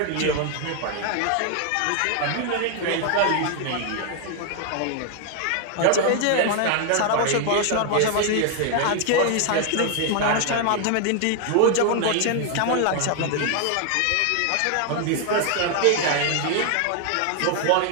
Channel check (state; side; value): different; both; correlation 0.00